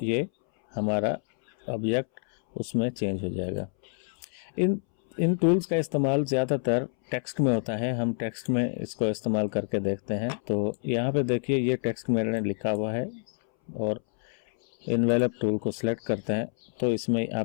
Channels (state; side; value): silent; right; 60 dB below the other